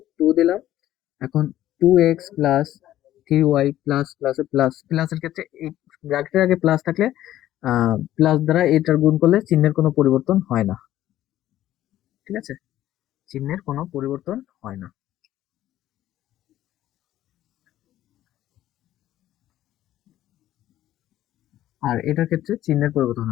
2 দিলাম। এখন 2x plus 3y plus plus plus প্লাসের ক্ষেত্রে এই ব্র্যাকেটের আগে প্লাস থাকলে প্লাস দ্বারা এটার গুণ করলে চিহ্নের কোনো পরিবর্তন হয় না। ঠিক আছে, চিহ্নের কোনো পরিবর্তন হয় না। আর এটার ক্ষেত্রে চিহ্নের পরিবর্তন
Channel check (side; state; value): right; quieter; 13.3 dB